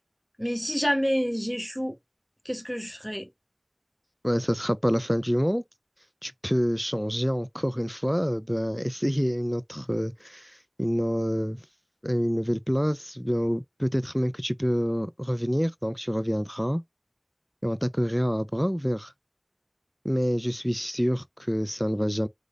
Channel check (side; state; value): both; identical; correlation 1.00